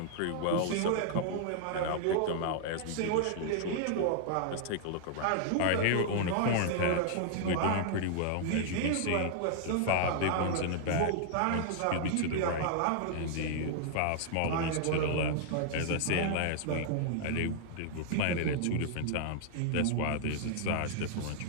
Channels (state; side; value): different; both; correlation -0.01